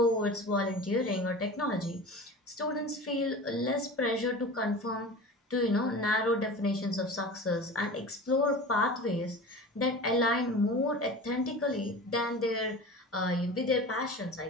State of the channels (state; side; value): normal; both; correlation 0.34